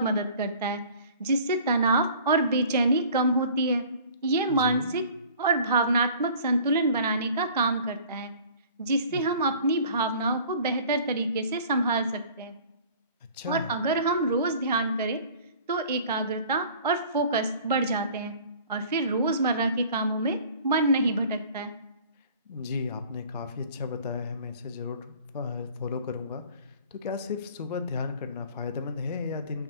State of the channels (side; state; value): both; inverted; correlation -0.48